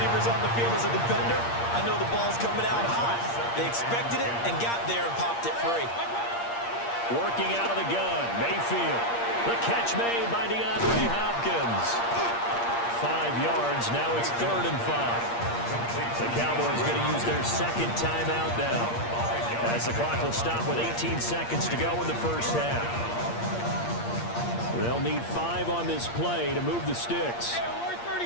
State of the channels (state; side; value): late; right; 8.6 ms